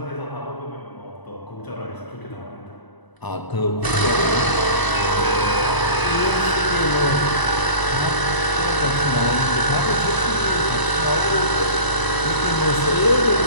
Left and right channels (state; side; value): late; right; 1.0 ms